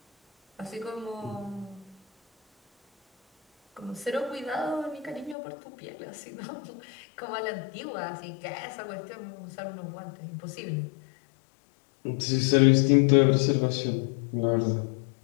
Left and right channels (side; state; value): right; drops out; at 5.4 s